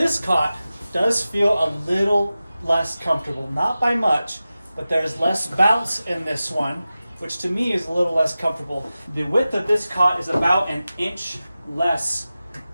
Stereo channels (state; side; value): inverted; both; correlation -0.95